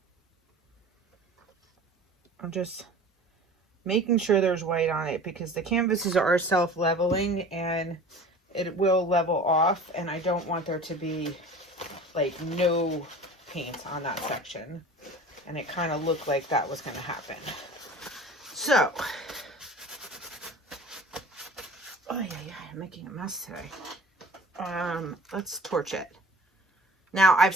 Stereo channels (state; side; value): normal; both; correlation 0.42